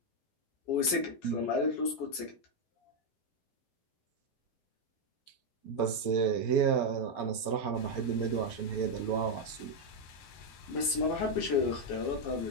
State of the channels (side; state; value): right; late; 14 ms